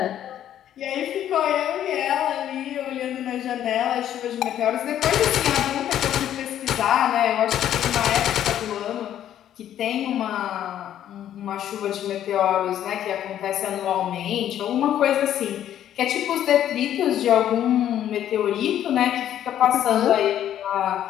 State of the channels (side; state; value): right; quieter; 11.0 dB